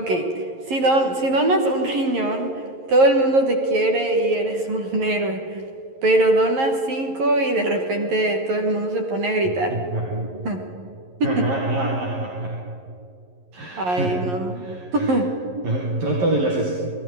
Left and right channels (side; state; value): left; late; 11 ms